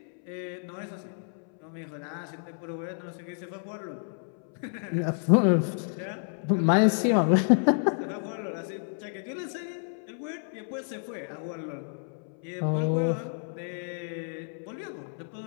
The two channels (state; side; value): silent; right; 58 dB below the other